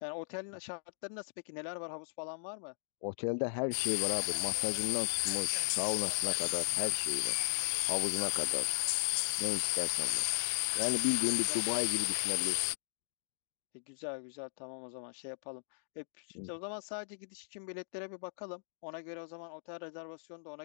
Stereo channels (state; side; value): silent; right; digital silence